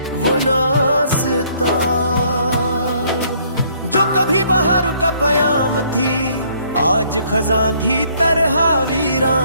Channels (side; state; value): both; inverted; correlation -0.64